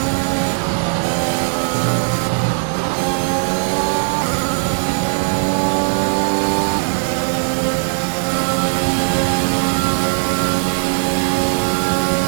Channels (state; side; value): silent; left; digital silence